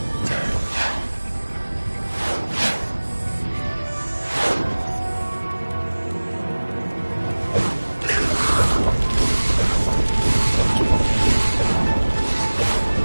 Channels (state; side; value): inverted; both; correlation -1.00